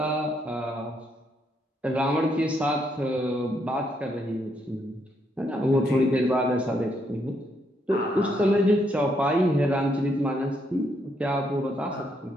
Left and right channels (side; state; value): both; normal; correlation 0.75